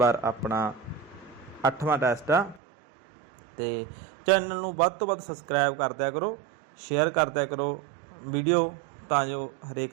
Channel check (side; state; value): left; drops out; at 2.6 s